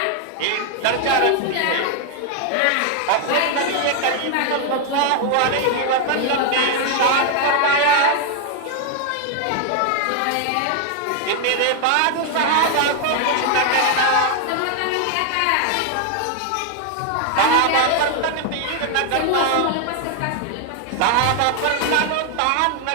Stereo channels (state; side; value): different; both; correlation 0.00